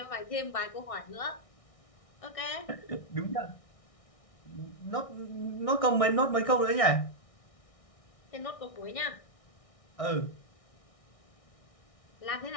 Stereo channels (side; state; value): right; late; 1.6 ms